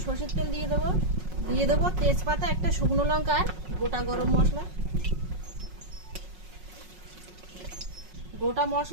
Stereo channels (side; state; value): left; late; 5.5 ms